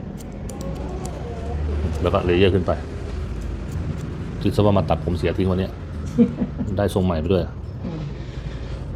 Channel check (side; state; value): both; identical; correlation 1.00